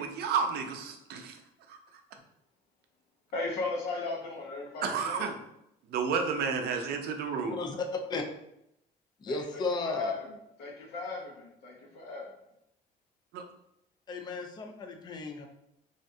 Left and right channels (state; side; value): normal; both; correlation 0.20